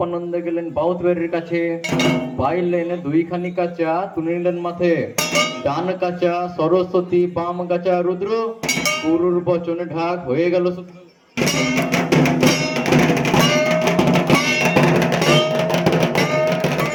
গেলেন বাউতবাড়ির কাছে, পাইলেন 2খানি কাঁচা তুলে নিলেন মাথে, ডান কাঁচা সরস্বতী বাম কাঁচা রুদ্র, গুরুর বচনে ঢাক হয়ে গেল সূত্র।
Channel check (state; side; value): identical; both; correlation 1.00